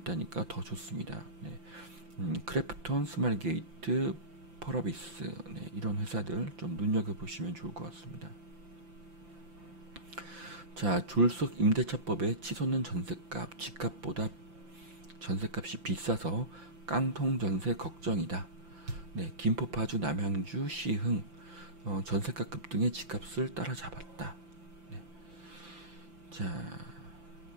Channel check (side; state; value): left; late; 5.9 ms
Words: 더 좋습니다. 크래프톤, 스마일게이트, 펄어비스, 이런 회사들 좀 눈여겨보시면 좋을 것 같습니다. 자, 졸속 임대차법에 치솟는 전세값, 집값보다 전세값이 비싸서 깡통 전세 걱정이다. 네, 김포, 파주, 남양주, 시흥 전세가 급등의 집값을 따라잡았다. 네. 자,